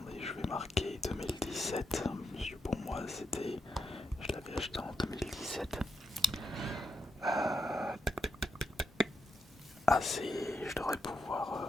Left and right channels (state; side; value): normal; both; correlation 0.83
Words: je vais marquer 2017, parce que pour moi c'était... Je l'avais acheté en 2017. Ah c'est... Je devrais